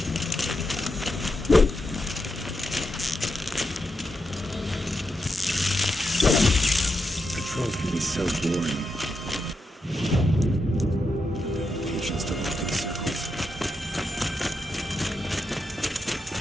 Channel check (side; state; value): both; normal; correlation 0.85